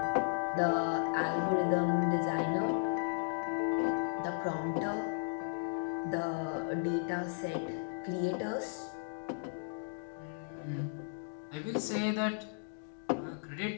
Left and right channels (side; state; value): right; silent; digital silence